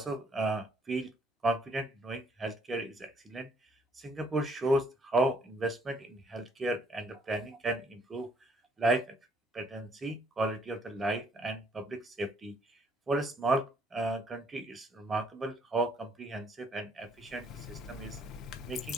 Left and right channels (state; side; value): normal; both; correlation 0.66